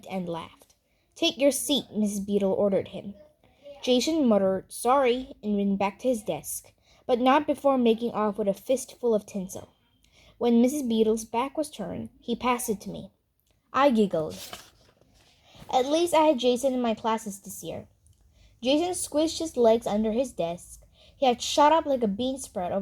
and laughed. "Take your seat," Mrs. Beadle ordered him. Jason muttered sorry and went back to his desk, but not before making off with a fistful of tinsel. When Mrs. Beadle's back was turned, he passed it to me. I giggled. At least I had Jason in my classes this year. Jason squished his legs under his desk. He had shot up like a bean sprout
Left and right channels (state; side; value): identical; both; correlation 1.00